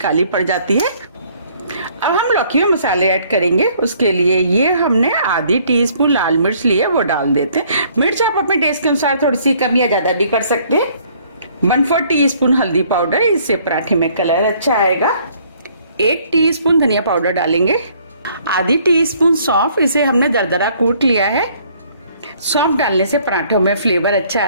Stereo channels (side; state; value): both; inverted; correlation -0.61